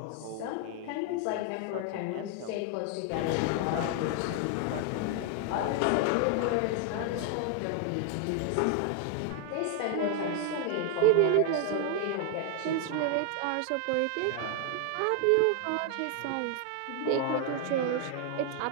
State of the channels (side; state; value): both; different; correlation 0.00